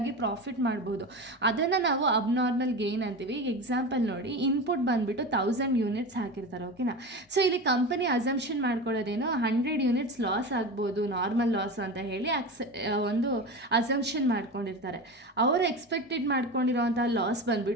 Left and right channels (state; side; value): normal; both; correlation 0.26